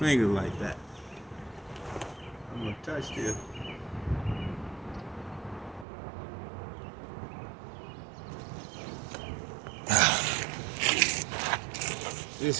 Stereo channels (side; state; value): left; drops out; at 5.9 s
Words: like that. I'm gonna touch this. This